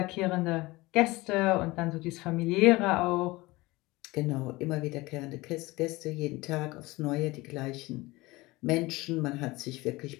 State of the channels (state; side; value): quieter; right; 21.2 dB